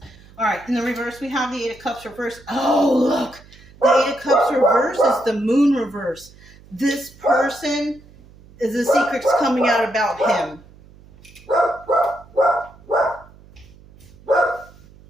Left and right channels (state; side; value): noise; right; hum, 24 dB below the sound